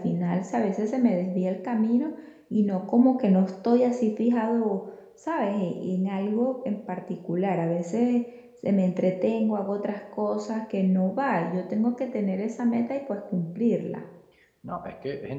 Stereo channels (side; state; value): both; identical; correlation 1.00